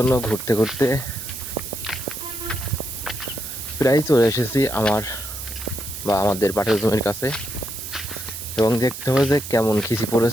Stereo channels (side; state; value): right; noise; hiss, 10 dB below the sound